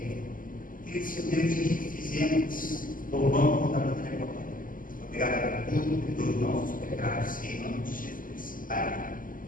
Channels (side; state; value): right; late; 0.40 ms